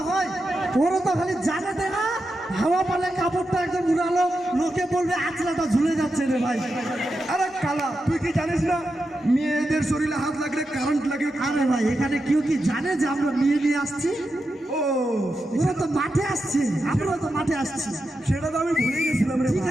হয়। ওরা তো খালি জানে দে না, হাওয়া পালে কাপড়টা একদম উড়ালো, লোকে বলবে আঁচলাটা ঝুলে যাচ্ছে রে ভাই। আরে কালা, তুই কি জানিস না মেয়েদের শরীরে হাত লাগলে কারেন্ট লাগে? আরে ভাই, এখানে কেউ কি জানে যে আমরা মেয়ে নিয়ে আসছি? ও, ওরা তো মাঠে আসছে, আমরা তো মাঠে আসছি। সেটা তো আমি ভুলে গেছিলাম রে ঠিক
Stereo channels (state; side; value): normal; both; correlation 0.88